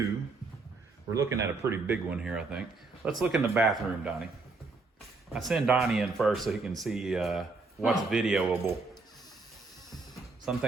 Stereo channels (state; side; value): quieter; left; 3.8 dB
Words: We're looking at a pretty big one here, I think. Let's look in the bathroom, Donnie. I send Donnie in first so he can see what's videoable. Some